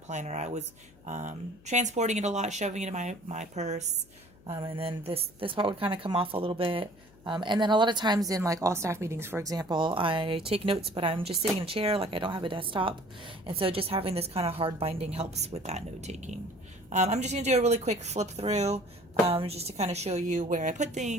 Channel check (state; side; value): noise; left; hum, 26 dB below the sound